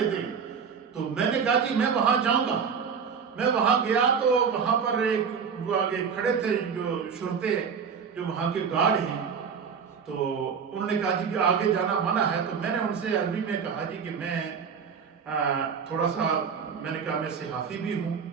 تو میں نے کہا کہ میں وہاں جاؤں گا۔ میں وہاں گیا تو وہاں پر ایک وہ آگے کھڑے تھے جو شرطے جو وہاں کے گارڈ ہیں، تو انہوں نے کہا جی کہ آگے جانا منع ہے۔ تو میں نے ان سے عربی میں کہا جی کہ میں تھوڑا سا، میں نے کہا میں صحافی بھی ہوں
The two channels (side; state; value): left; quieter; 6.4 dB